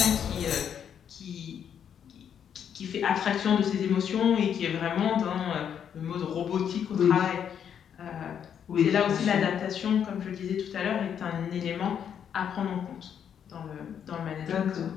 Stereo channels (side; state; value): right; quieter; 8.4 dB